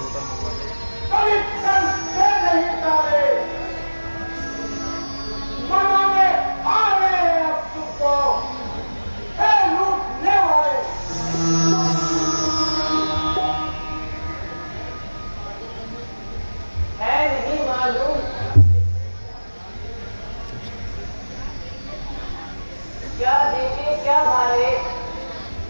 क्या देखे क्या भाले,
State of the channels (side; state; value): both; inverted; correlation -1.00